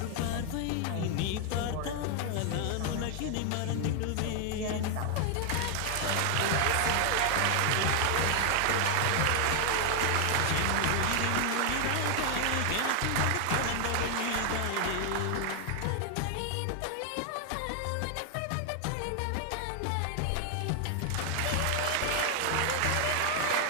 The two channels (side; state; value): both; different; correlation 0.00